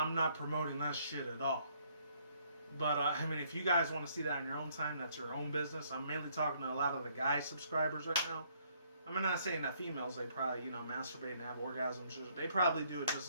not promoting that shit at all. But I mean, if you guys want to see that in your own time, that's your own business. I'm mainly talking to a lot of the guy subscribers right now. I'm not saying that females, they probably, masturbate and have orgasms. They probably do it just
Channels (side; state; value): both; inverted; correlation -0.67